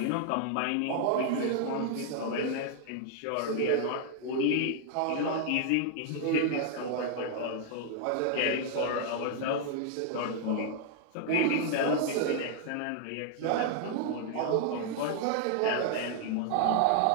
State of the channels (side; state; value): both; different; correlation 0.00